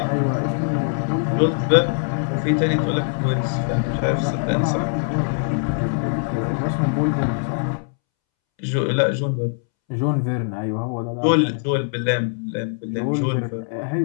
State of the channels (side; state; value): right; silent; 64 dB below the other